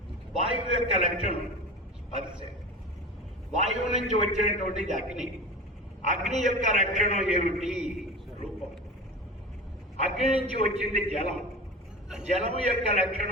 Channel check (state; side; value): normal; both; correlation 0.31